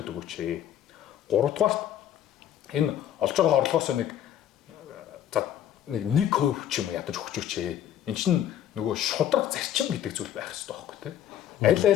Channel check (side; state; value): right; quieter; 10.7 dB